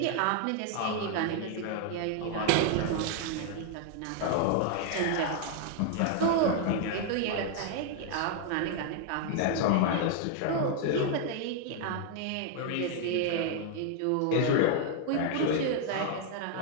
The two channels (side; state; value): both; different; correlation 0.00